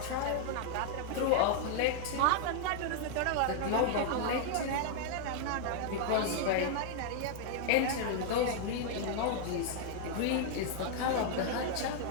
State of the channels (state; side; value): different; both; correlation 0.00